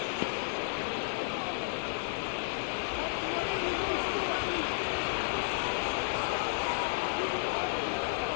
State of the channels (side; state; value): right; silent; digital silence